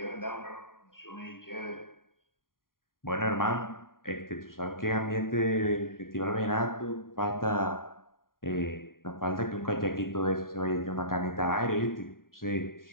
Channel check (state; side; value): late; right; 0.91 ms